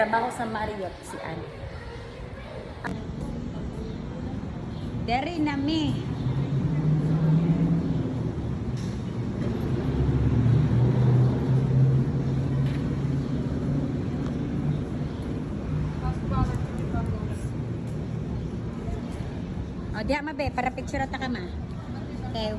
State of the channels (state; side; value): identical; both; correlation 1.00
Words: sa Marriott si Ann. Dere nami. Diya mabe, para picture ata ka ma. Okay,